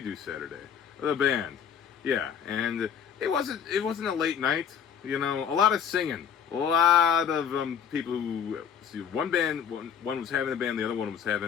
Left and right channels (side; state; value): right; quieter; 8.0 dB